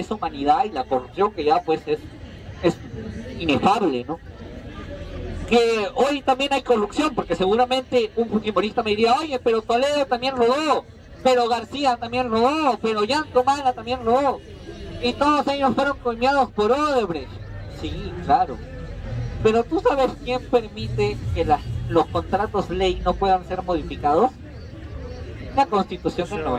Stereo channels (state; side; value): identical; both; correlation 1.00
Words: humanidad y la corrupción, que ya pues es inefable, ¿no? Que hoy también hay corrupción, porque seguramente un fujimorista me diría, oye, pero Toledo también robó, pero García también robó, pero Yantomala también robó, y todos ellos fueron coimeados por Odebrecht. Sí, claro, pero ¿tú sabes quién permite que los contratos ley no puedan ser modificados? La Constitución del